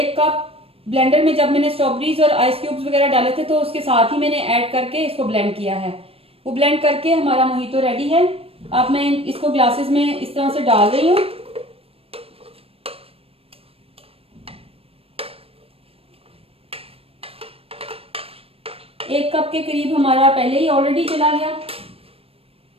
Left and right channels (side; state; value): left; late; 0.28 ms